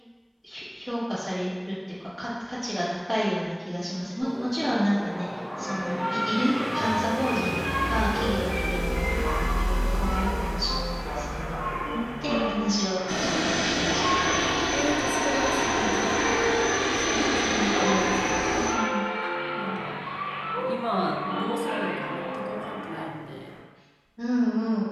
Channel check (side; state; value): both; identical; correlation 1.00